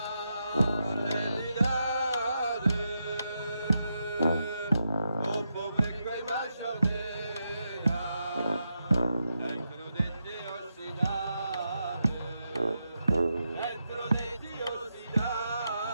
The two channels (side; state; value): both; inverted; correlation -0.85